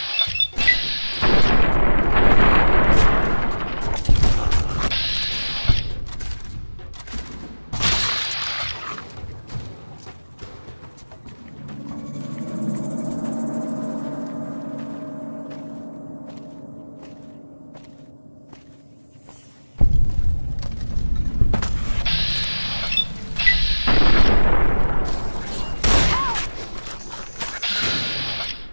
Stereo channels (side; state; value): both; inverted; correlation -1.00